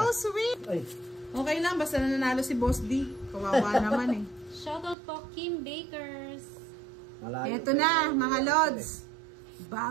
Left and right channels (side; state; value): left; drops out; at 5.0 s